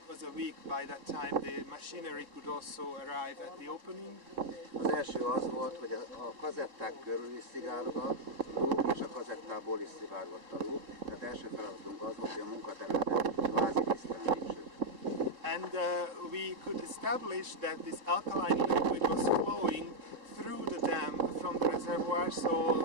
was a week by that time. The machinery could also arrive at the opening. Az első az volt, hogy a kazetták körül is szivárgott a lúg, és a kazettából is szivárgott a lúg. Tehát első feladatunk az volt, hogy a munkaterületet kvázi tisztán. And we could establish that this alkaline liquid was flowing through the dam from the reservoir.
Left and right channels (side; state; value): left; late; 3.7 ms